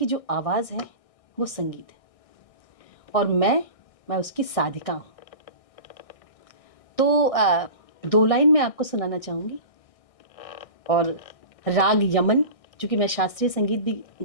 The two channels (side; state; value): right; late; 1.6 ms